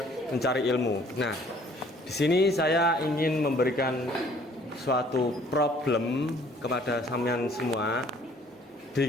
mencari ilmu. Nah, di sini saya ingin memberikan suatu problem kepada sampean semua di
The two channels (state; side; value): normal; both; correlation 0.57